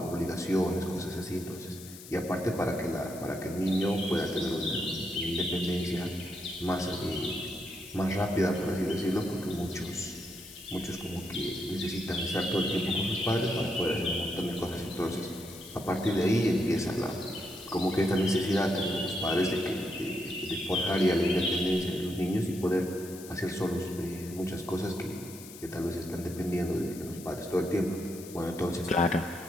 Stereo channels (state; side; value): noise; left; hiss, 16 dB below the sound